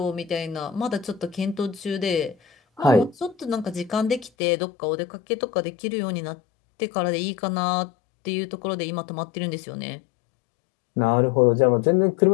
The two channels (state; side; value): drops out; right; at 4.3 s